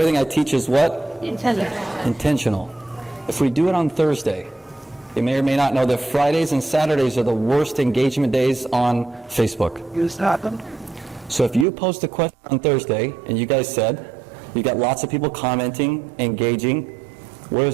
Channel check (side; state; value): left; drops out; at 11.7 s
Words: I teach is what? Intentional. If we do it on Thursday, You may or may not know that Fridays and Saturdays are the worst engagement days on Facebook. So if you post a question on Thursday, and you guys said, you got lots of people commenting, engaging, where